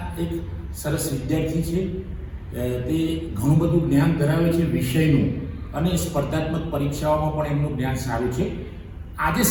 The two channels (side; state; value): both; identical; correlation 1.00